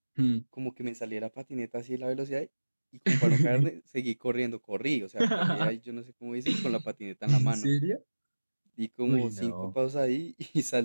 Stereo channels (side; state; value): both; inverted; correlation -1.00